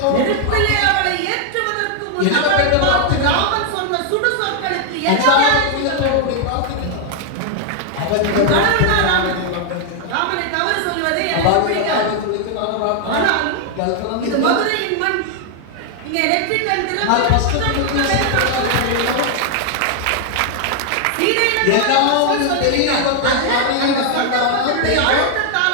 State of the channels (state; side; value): different; both; correlation 0.00